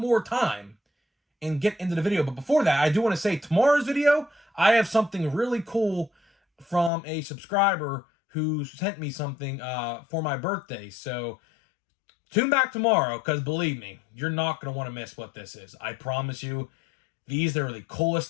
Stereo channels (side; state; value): right; drops out; at 6.9 s